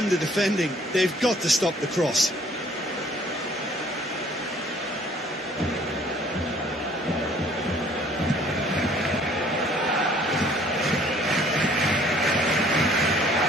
the defending. They've got to stop the cross.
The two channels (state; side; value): normal; both; correlation 0.57